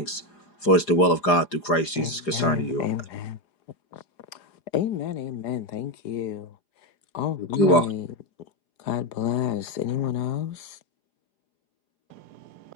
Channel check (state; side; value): late; right; 4.9 ms